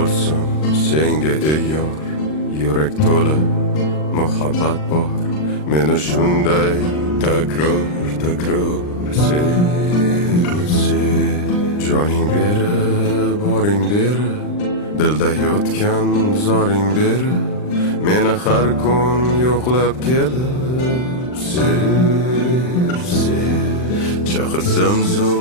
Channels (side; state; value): right; late; 39 ms